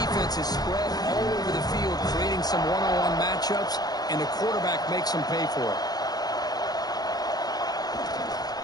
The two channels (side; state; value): right; late; 0.19 ms